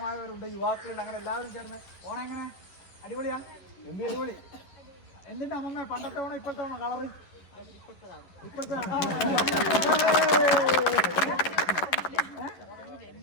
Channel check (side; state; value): right; late; 10 ms